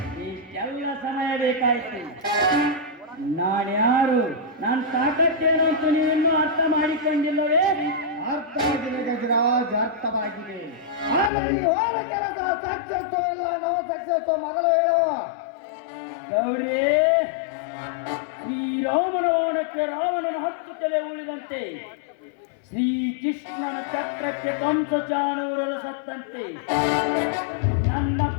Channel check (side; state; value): right; drops out; at 11.3 s